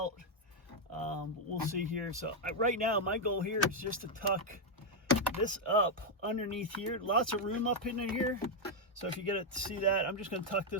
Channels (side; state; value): both; normal; correlation 0.01